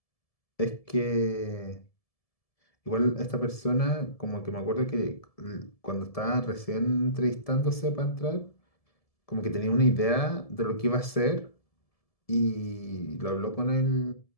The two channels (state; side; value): late; right; 1.7 ms